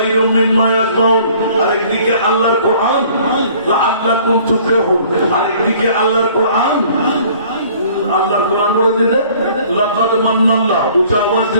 মিম্মা ইয়াসমাউন, আরেকদিকে আল্লাহর কোরআন লাআল্লাকুম তুফলিহুন, আরেকদিকে আল্লাহর কোরআন বলে দিতে লাকাদ মান্নাল্লাহ। উচ্চ আওয়াজ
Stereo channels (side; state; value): both; inverted; correlation -0.54